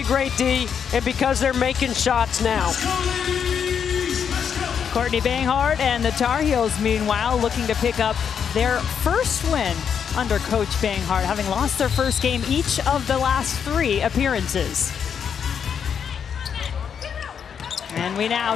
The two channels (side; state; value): right; quieter; 7.5 dB